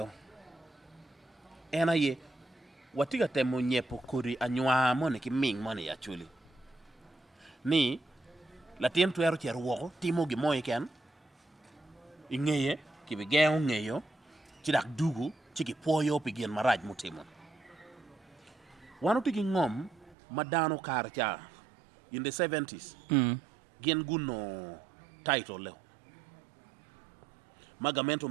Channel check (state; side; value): drops out; left; at 20.2 s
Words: ena ye watiga temo nyepo kuri anywa mone ki ming mone ya chuli ni la tien tuero cher woko timo gi moy ken ingeye ki be geo ngeyo ci dak dugu ci ki poyo pi gen maraj mutimo wanu tigi ngom madano karcha in the 70s gen guno title le magamento